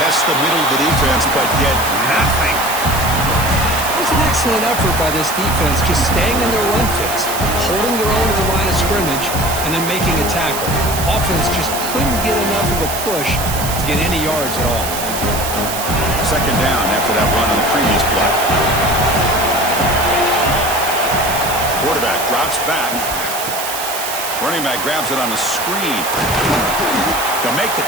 the middle of the defense, but get nothing. It was an excellent effort by this defense, just staying in their run fits, holding their own at the line of scrimmage, and then making a tackle. Offense just couldn't get enough of a push to get any yards at all. 2nd down after that run on the previous play. Quarterback drops back. Running back grabs it on the screen. They'll make the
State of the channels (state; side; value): noise; right; hiss, 6 dB below the sound